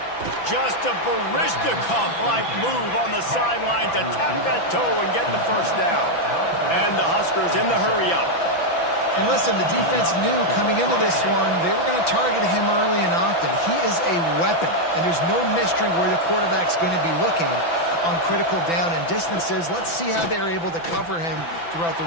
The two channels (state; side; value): late; right; 5.9 ms